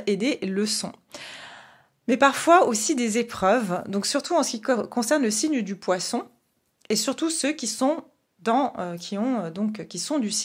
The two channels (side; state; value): both; identical; correlation 1.00